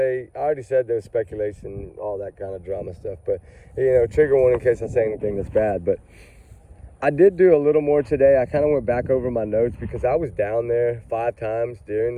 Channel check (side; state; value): both; identical; correlation 1.00